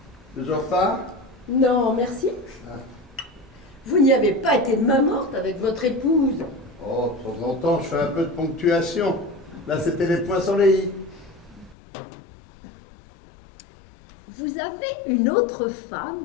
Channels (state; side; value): drops out; right; at 11.8 s